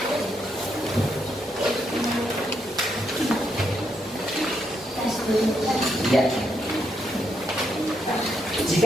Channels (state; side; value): normal; both; correlation 0.78